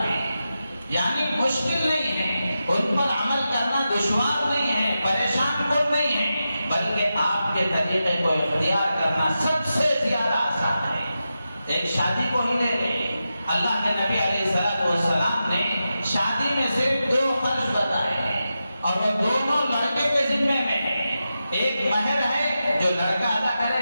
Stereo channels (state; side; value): inverted; both; correlation -0.91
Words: ہیں، یعنی مشکل نہیں ہے، ان پر عمل کرنا دشوار نہیں ہے، پریشان کن نہیں ہے، بلکہ آپ کے طریقے کو اختیار کرنا سب سے زیادہ آسان ہے۔ ایک شادی کو ہی لے لیں، اللہ کے نبی علیہ السلام نے شادی میں صرف 2 خرچ بتائے ہیں اور وہ دونوں لڑکے کے ذمے میں ہیں۔ ایک مہر ہے جو لڑکا ادا